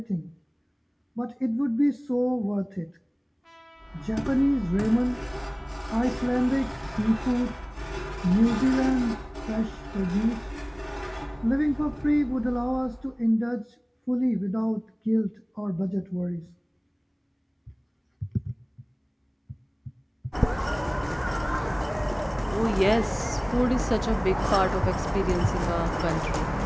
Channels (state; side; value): identical; both; correlation 1.00